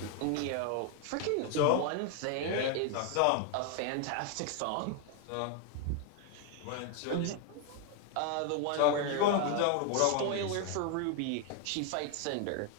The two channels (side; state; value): both; different; correlation 0.01